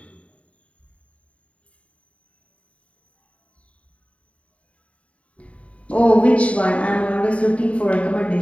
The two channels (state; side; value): late; right; 0.065 ms